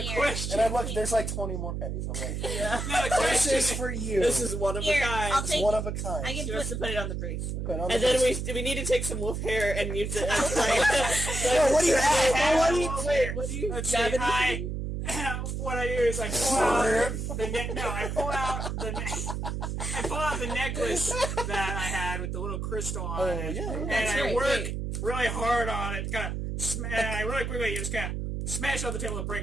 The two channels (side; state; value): right; noise; hum, 3 dB below the sound